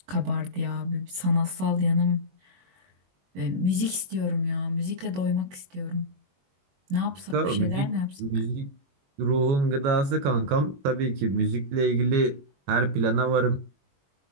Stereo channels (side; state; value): left; late; 21 ms